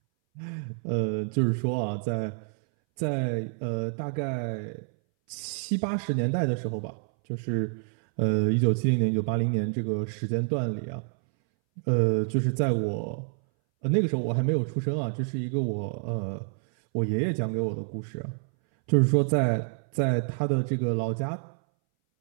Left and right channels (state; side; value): silent; left; 60 dB below the other